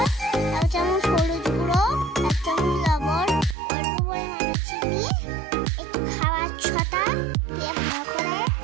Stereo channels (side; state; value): left; drops out; at 3.6 s